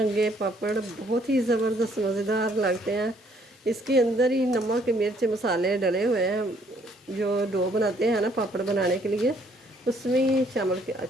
पापड़ बहुत ही ज़बरदस्त मज़ेदार लगते हैं। इसके अंदर ही नमक मिर्च मसाले डले हुए हैं। जो डो बनाते हैं ना पापड़ बनाने के लिए, उसमें ही शामिल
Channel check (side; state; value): both; normal; correlation 0.65